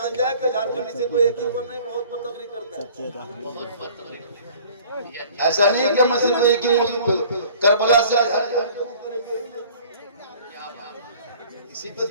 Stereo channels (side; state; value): both; inverted; correlation -0.49